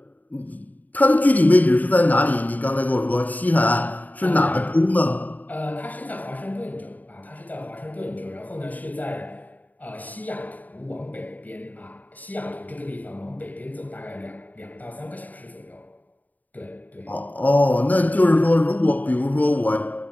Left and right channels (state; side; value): late; right; 0.079 ms